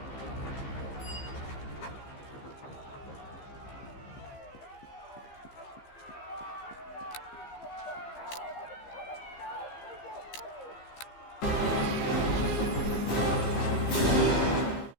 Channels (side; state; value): right; late; 15 ms